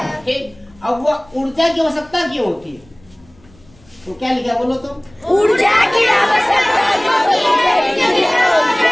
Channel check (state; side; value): noise; left; rumble, 29 dB below the sound